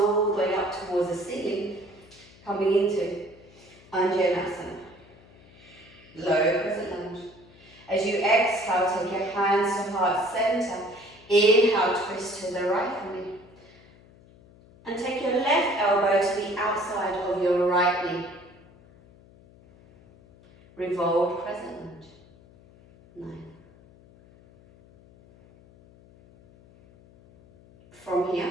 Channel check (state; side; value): noise; left; hum, 25 dB below the sound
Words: the way up towards the ceiling, coming into Vinyasa. Low crescent lunge. As you exhale, take your hands to heart centre. Inhale, twist to the right for me. And take your left elbow to the outside of your right knee. Revolved crescent lunge. 9. From here,